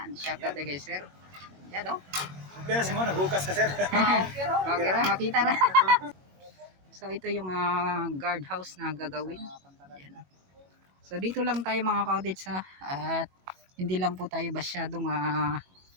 shout out kay sir. Yan oh. Pero si mo, naghukas ka sir. Okay ra, makita ra. So ito yung guard house na gagawin. Yan. So dito lang tayo mga ka-cottage at hindi lang po tayo masyadong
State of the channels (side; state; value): left; late; 21 ms